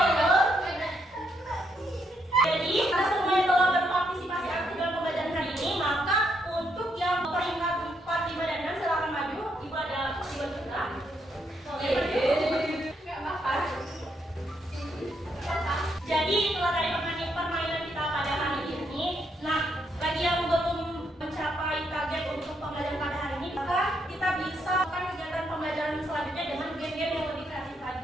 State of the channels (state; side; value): normal; both; correlation 0.76